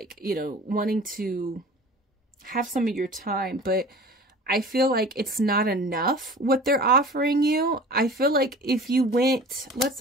you know, wanting to have some of your time, but I feel like it's not enough what they're offering you. I feel like if you went, let's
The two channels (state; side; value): normal; both; correlation 0.41